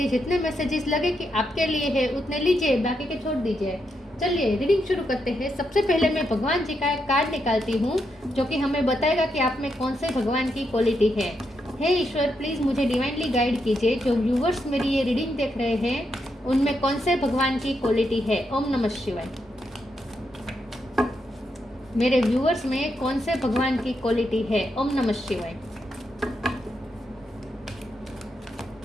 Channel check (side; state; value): both; normal; correlation 0.82